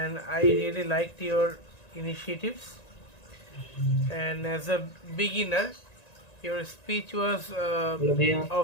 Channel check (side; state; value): right; late; 1.9 ms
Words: I really liked your initiatives. And as a beginner, your speech was Hello, Bhaiya.